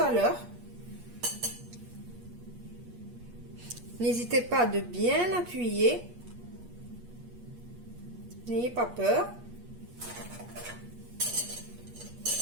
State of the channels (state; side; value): late; left; 8.4 ms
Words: à l'heure. N'hésitez pas de bien appuyer. N'ayez pas peur.